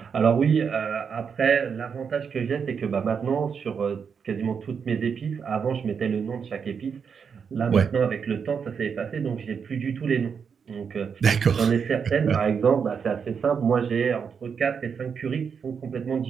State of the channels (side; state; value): left; quieter; 6.5 dB